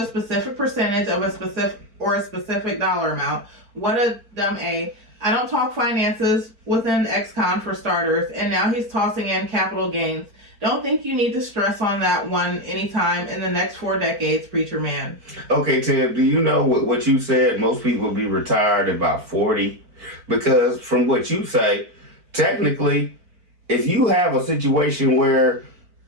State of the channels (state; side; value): late; left; 4.5 ms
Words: specific percentage of a specific dollar amount. What a dumb A. I don't talk finances within ex-con for starters, and now he's tossing in capital gains. Don't think you need to stress on that one anytime in the next 4 decades, preacher man. Okay, Tim, do you know what you said? Most people will be retired at about 40. Because from what you say, technically, if you have a situation where